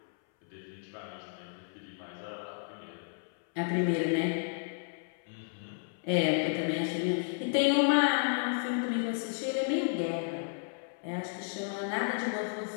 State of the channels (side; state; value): right; silent; 56 dB below the other